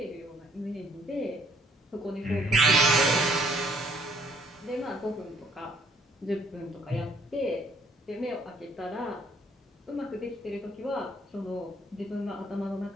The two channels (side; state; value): both; normal; correlation 0.63